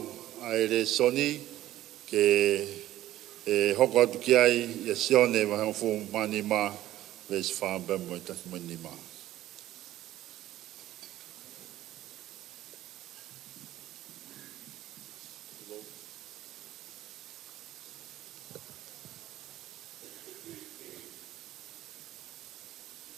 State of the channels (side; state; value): left; quieter; 14.2 dB